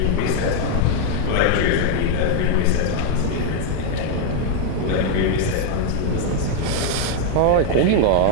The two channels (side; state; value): both; different; correlation 0.00